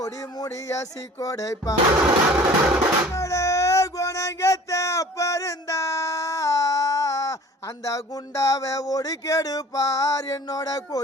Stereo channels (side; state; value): both; normal; correlation 0.46